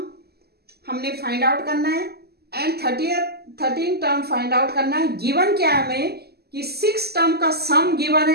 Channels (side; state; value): left; late; 0.46 ms